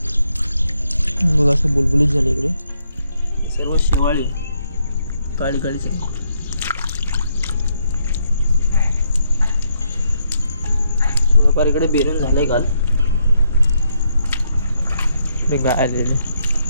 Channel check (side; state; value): both; inverted; correlation -0.76